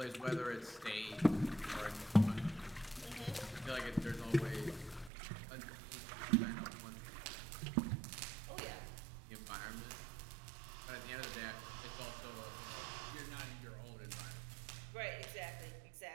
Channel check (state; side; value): drops out; left; at 5.1 s